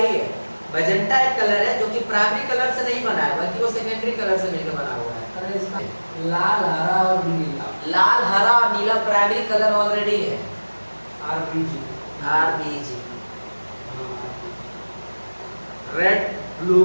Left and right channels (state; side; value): inverted; both; correlation -1.00